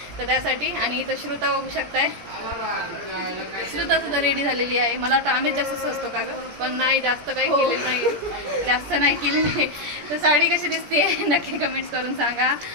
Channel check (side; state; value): left; late; 17 ms